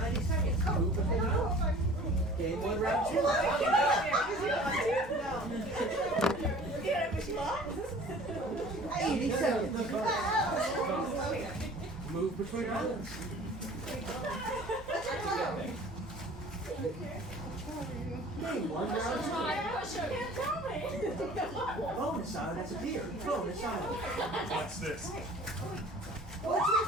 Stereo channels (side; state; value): both; normal; correlation 0.46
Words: seconds. Move between islands. Game 1, round 2. 80 seconds. Move between islands. Game 1, round 2. Bonus island has appeared. Bonus island. What's this?